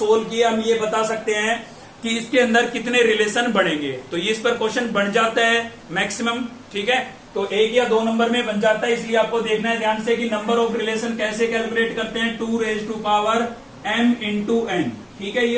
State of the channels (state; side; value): identical; both; correlation 1.00